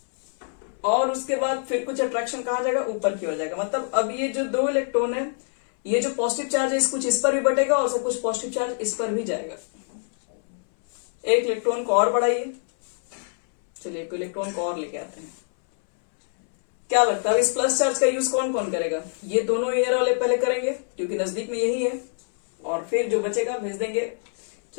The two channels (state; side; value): silent; right; 62 dB below the other